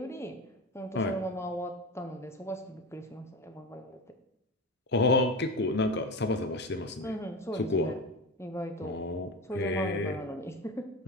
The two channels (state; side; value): normal; both; correlation 0.25